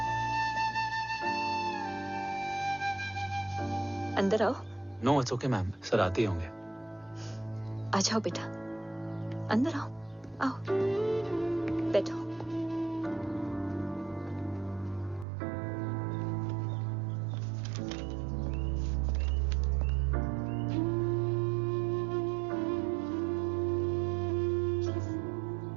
अंदर आओ। No it's okay ma'am, sir आते ही होंगे। आ जाओ बेटा, अंदर आओ। आओ, बैठो।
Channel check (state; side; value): drops out; left; at 15.2 s